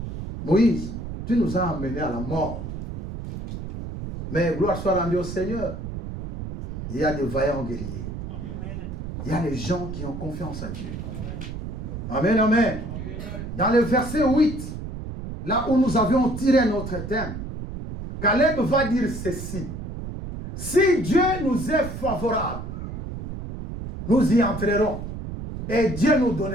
Moïse, tu nous as amenés à la mort. Mais gloire soit rendue au Seigneur. Il y a des vaillants guerriers. Il y a des gens qui ont confiance à Dieu. Amen, amen. Dans le verset 8, là où nous avions tiré notre thème, Caleb va dire ceci. Si Dieu nous est favorable, nous y entrerons et Dieu nous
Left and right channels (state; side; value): noise; right; rumble, 8 dB below the sound